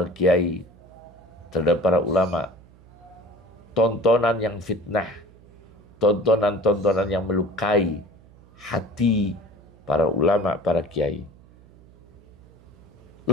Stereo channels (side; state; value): right; noise; hum, 25 dB below the sound